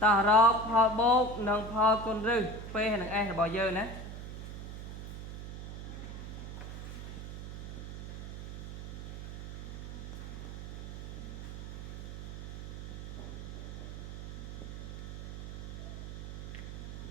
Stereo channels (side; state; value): right; noise; hum, 8 dB below the sound